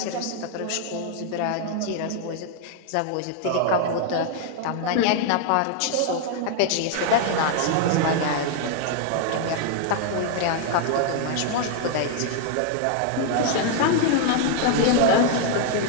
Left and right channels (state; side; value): different; both; correlation 0.00